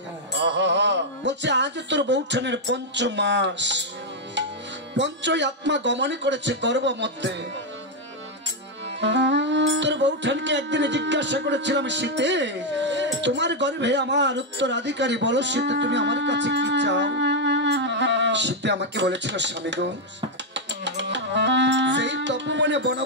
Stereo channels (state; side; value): normal; both; correlation 0.01